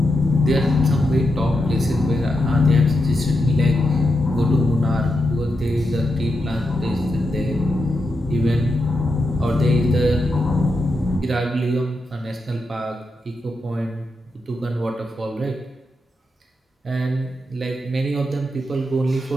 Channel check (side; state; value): both; normal; correlation 0.86